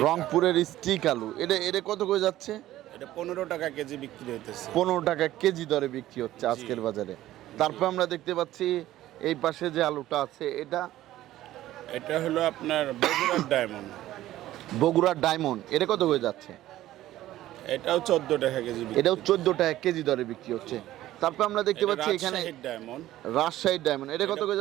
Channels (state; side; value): quieter; left; 14.5 dB